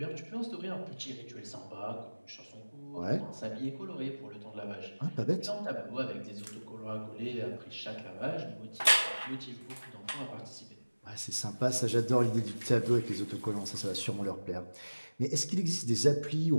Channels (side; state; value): both; inverted; correlation -1.00